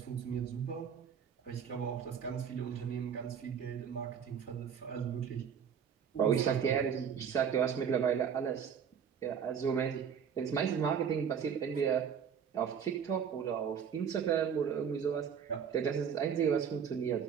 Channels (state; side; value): quieter; left; 7.5 dB